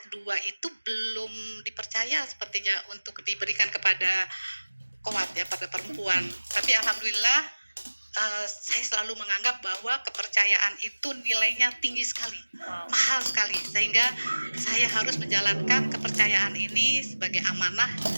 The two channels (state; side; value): inverted; both; correlation -1.00